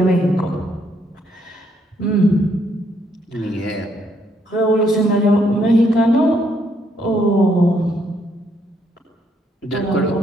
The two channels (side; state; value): both; normal; correlation 0.72